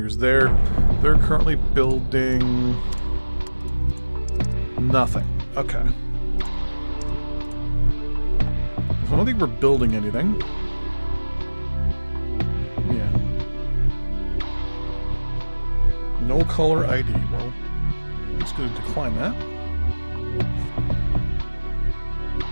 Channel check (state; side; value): inverted; both; correlation -1.00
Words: there. They're currently building nothing. Okay. So I don't think we're building anything. Yeah. No color ID. Well, I'm just going to decline that.